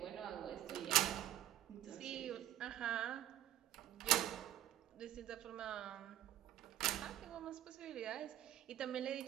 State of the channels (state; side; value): quieter; left; 13.0 dB